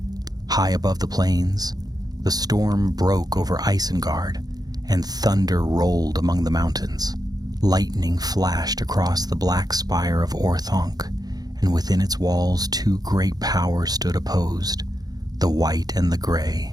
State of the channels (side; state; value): left; late; 0.19 ms